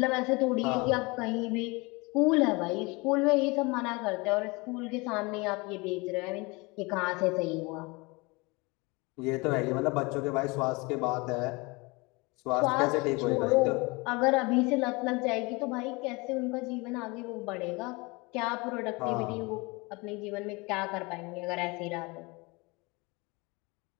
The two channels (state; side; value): quieter; right; 26.1 dB